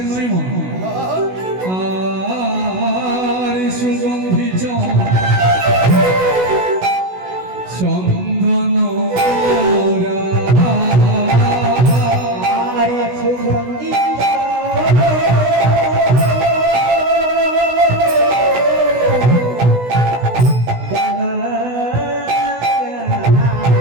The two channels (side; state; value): left; late; 16 ms